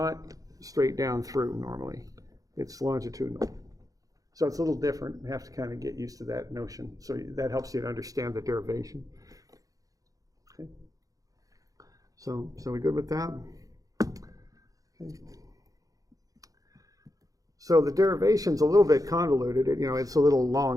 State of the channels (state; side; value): late; left; 0.17 ms